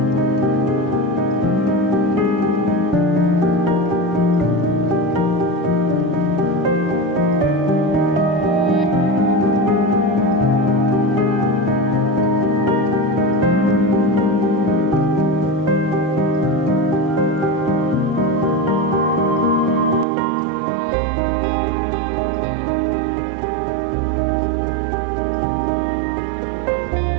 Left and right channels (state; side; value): drops out; left; at 20.1 s